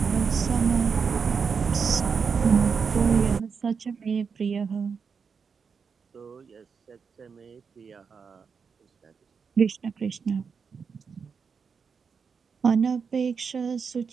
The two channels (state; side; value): quieter; left; 5.8 dB